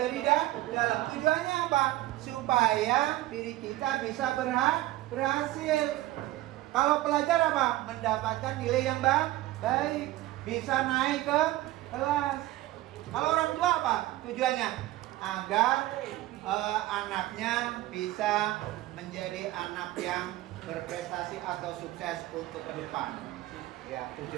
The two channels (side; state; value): left; quieter; 16.5 dB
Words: dalam. Tujuannya apa? Supaya diri kita bisa berhasil. Kalau pelajar apa? Mendapatkan nilai yang baik, bisa naik ke kelas. Kalau orang tua apa? Tujuannya agar anaknya bisa menjadi anak yang berprestasi atau sukses untuk ke depan. Ya,